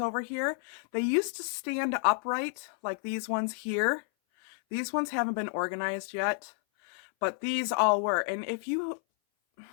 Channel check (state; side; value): silent; right; 57 dB below the other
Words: here. They used to stand upright, like these ones here. These ones haven't been organized yet, but these all were. And